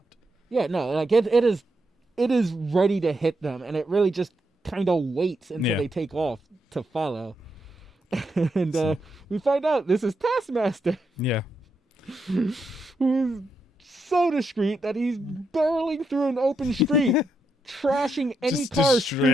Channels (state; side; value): normal; both; correlation 0.82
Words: Yeah, no, like it is ready to hit them, and it really just kind of waits until they take off to follow. And we find out this is Taskmaster. Yeah. Who's so discreet that he's barreling through an open street, trashing any car